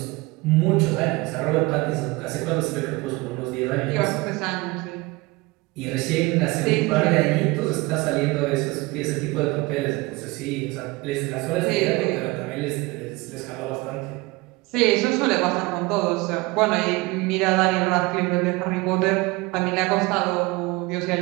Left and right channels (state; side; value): quieter; left; 23.2 dB